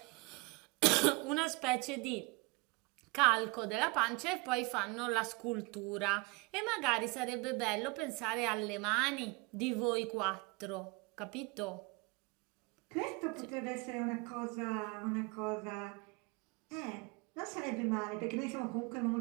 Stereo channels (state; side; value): quieter; left; 27.4 dB